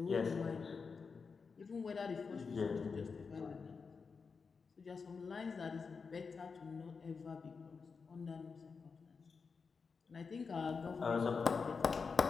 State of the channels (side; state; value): right; quieter; 5.2 dB